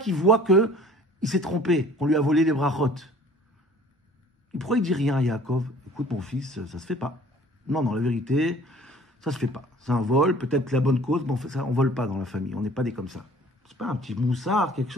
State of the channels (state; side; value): normal; both; correlation 0.51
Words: il voit que il s'est trompé, qu'on lui a volé les brachot. Pourquoi il dit rien à Yaakov? Écoute, mon fils, ça se fait pas. Non, la vérité, ça se fait pas. C'est un vol, peut-être la bonne cause, mais on vole pas dans la famille. On n'est pas des comme ça. C'est pas un petit moussard, quelque